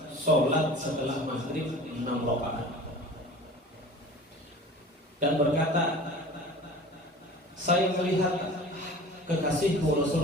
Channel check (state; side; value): normal; both; correlation 0.41